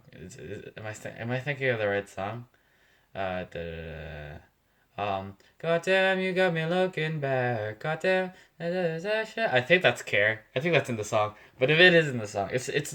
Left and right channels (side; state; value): both; identical; correlation 1.00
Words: am I thinking of the right song? Da, da, da, da. Goddamn, you got me looking back. Goddamn, I think that's Care. I think that's in the song. But if it is in the song, it's